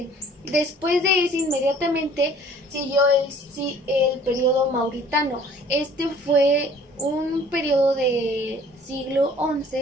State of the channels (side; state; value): both; normal; correlation 0.53